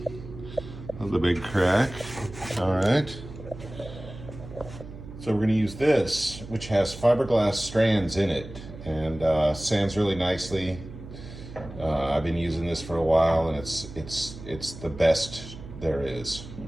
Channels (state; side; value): noise; right; hum, 14 dB below the sound